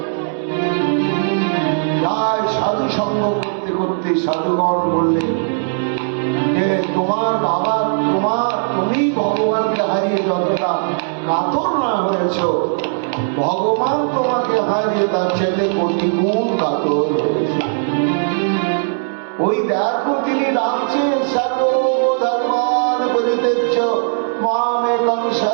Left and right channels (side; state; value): left; silent; digital silence